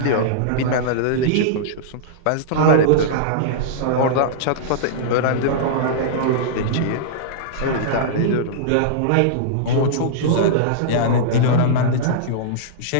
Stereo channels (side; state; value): both; different; correlation -0.03